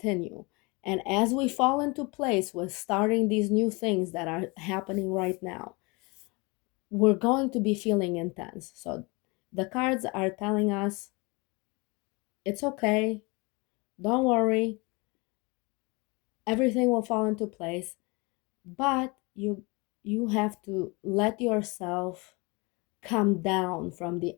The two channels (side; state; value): right; quieter; 27.4 dB